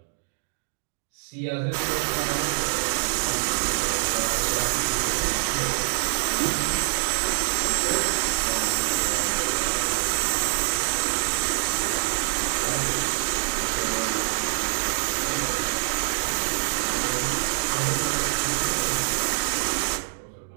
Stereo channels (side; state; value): left; silent; digital silence